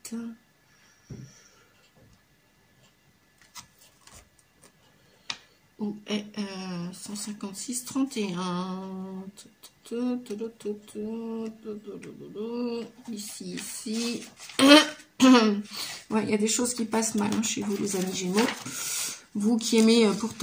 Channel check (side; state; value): both; identical; correlation 1.00